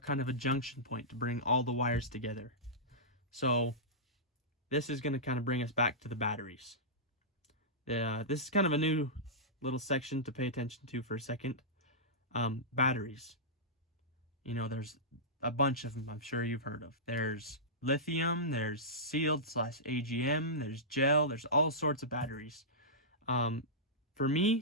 of a junction point to bring all the wires together. So this is going to kind of bring us back to the batteries. This is kind of a new little section to pay attention to for a second. Batteries. You know, there's a bunch of them I'm sure you've heard of. There's lithium, there's sealed / AGM, there's gel, there's all sorts of batteries. For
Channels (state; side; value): normal; both; correlation -0.16